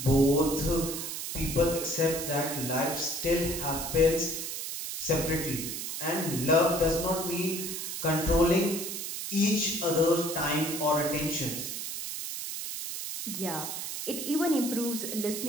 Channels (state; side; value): noise; right; hiss, 5 dB below the sound